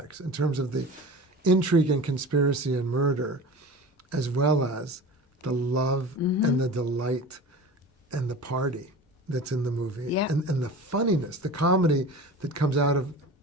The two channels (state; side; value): normal; both; correlation 0.35